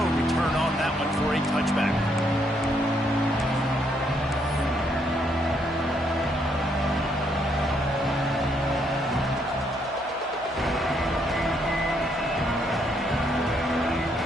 return on that one for a touchback.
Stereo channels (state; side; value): normal; both; correlation 0.73